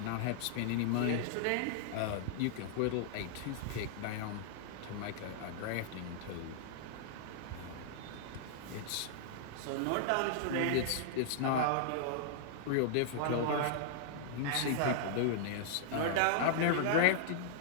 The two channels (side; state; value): both; different; correlation -0.01